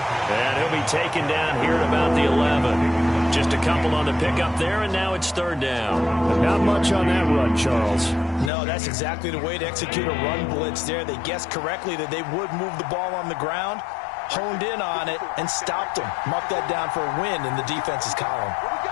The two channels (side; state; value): right; drops out; at 8.5 s